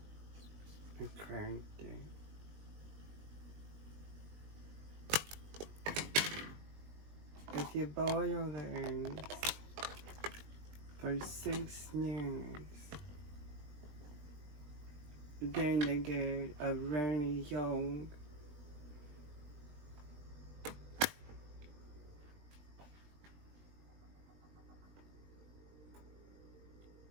I cracked it. If you boil the eggs for 6 minutes, then they get a runny yolk.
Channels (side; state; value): left; late; 20 ms